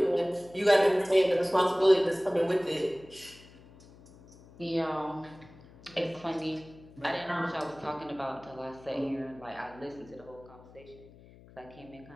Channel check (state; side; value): noise; left; hum, 22 dB below the sound